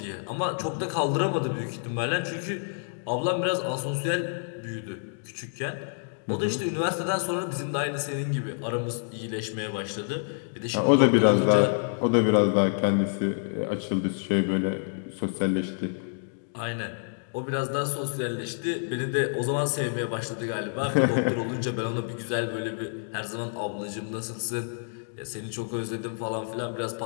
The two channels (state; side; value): silent; right; digital silence